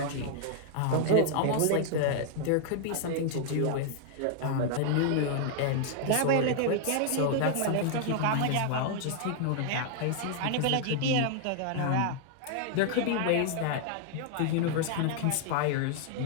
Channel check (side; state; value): both; different; correlation 0.00